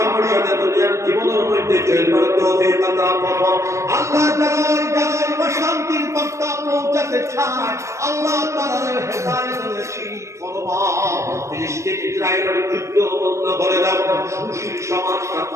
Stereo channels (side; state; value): left; late; 0.14 ms